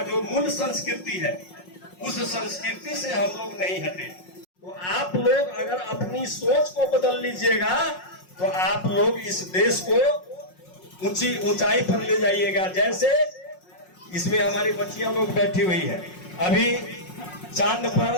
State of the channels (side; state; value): right; late; 5.5 ms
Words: जो मूल संस्कृति है, उस संस्कृति से हम लोग नहीं हटे। तो आप लोग अगर अपनी सोच को बदल लीजिएगा तो आप लोग इस देश को ऊंचाई पर ले जाइएगा। जैसे इसमें हमारी बच्चियां लोग बैठी हुई है, अभी चांद